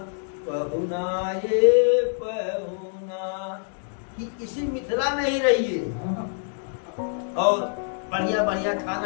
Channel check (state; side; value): silent; right; digital silence